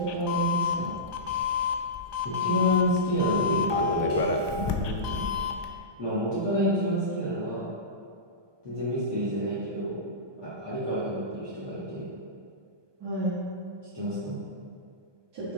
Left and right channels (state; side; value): late; left; 1.2 ms